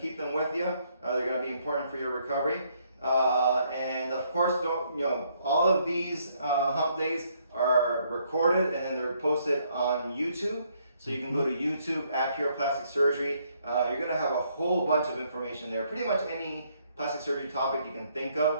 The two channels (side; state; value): both; inverted; correlation -0.70